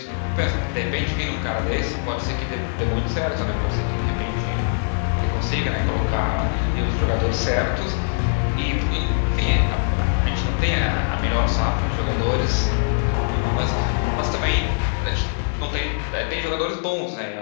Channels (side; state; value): right; silent; digital silence